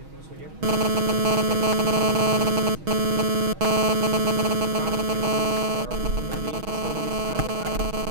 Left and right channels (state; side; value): late; left; 6.3 ms